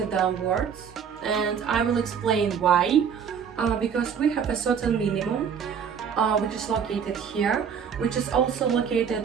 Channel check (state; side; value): quieter; left; 7.3 dB